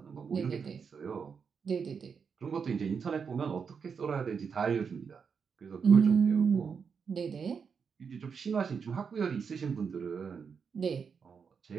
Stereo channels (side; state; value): left; quieter; 6.1 dB